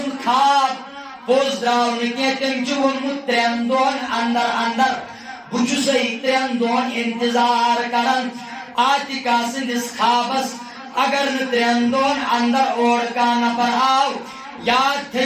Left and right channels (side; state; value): both; identical; correlation 1.00